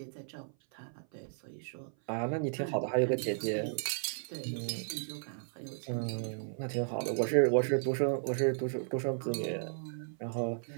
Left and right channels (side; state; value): left; silent; 55 dB below the other